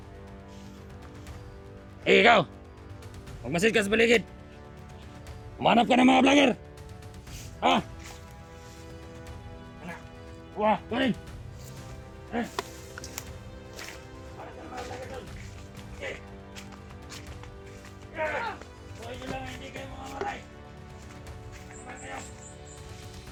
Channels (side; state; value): both; identical; correlation 1.00